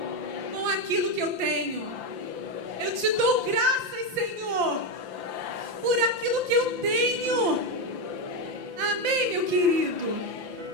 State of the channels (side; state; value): left; late; 5.8 ms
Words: Com aquilo que eu tenho. Eu te dou graças, Senhor, por aquilo que eu tenho. Amém, meu querido?